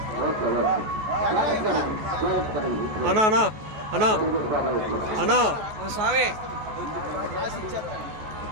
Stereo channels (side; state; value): left; late; 14 ms